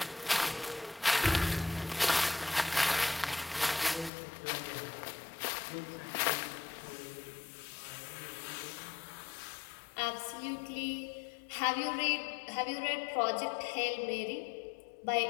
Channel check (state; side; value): drops out; right; at 4.1 s